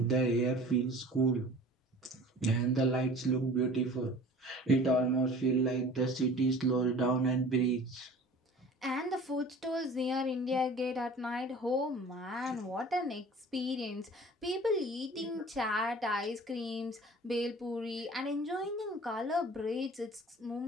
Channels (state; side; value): normal; both; correlation 0.44